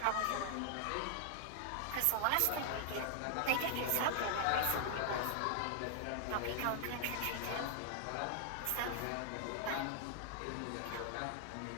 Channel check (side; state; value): both; different; correlation 0.00